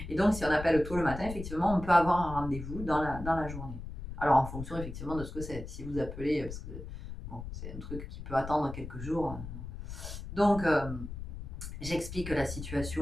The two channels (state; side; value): noise; left; rumble, 9 dB below the sound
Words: Et donc, si on appelle tôt le matin, effectivement, on peut avoir un rendez-vous dans la journée. Alors, en fonction, effectivement, de ce que c'est. Si vous appelez, parce que bon, c'est un truc qui peut attendre quelques jours. Donc, j'explique la